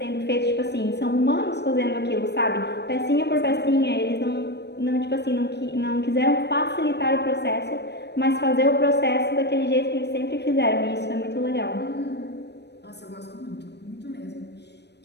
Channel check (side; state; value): right; late; 0.49 ms